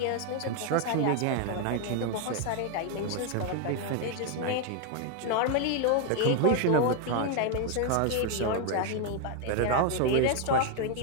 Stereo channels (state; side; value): different; both; correlation 0.01